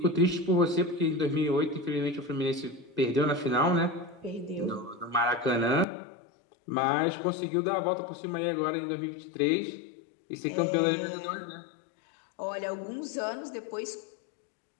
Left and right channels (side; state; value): right; drops out; at 5.9 s